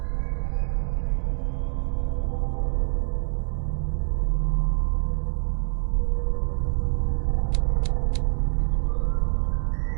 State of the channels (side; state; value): left; silent; digital silence